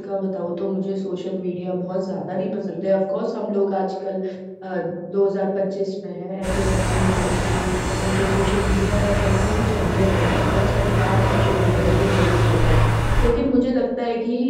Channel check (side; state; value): both; identical; correlation 1.00